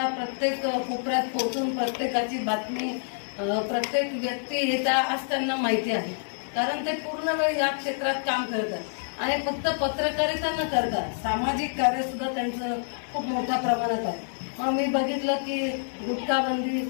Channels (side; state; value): right; silent; digital silence